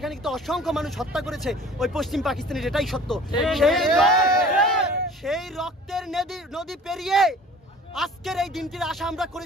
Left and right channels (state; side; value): normal; both; correlation 0.46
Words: কিন্তু অসংখ্য মানুষ হত্যা করেছে ওই পশ্চিম পাকিস্তানের, এটাই সত্য। সেই রক্তের নদী পেরিয়ে আজকের এই দিনটির আশা আমরা